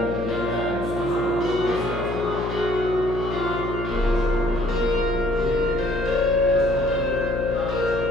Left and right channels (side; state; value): left; noise; hum, 6 dB below the sound